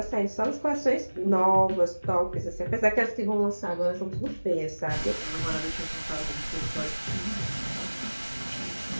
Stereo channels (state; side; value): inverted; both; correlation -1.00